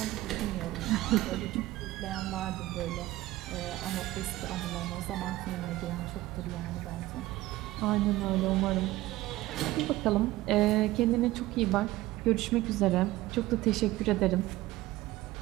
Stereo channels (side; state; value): left; quieter; 17.2 dB